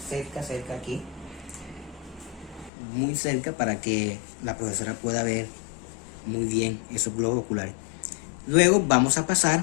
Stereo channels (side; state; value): right; drops out; at 2.7 s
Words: cerca aquí, muy cerca, para que la profesora pueda ver muy bien esos globos oculares. Luego vamos a